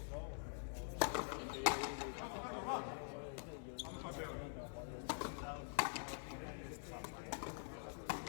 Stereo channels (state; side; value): silent; right; digital silence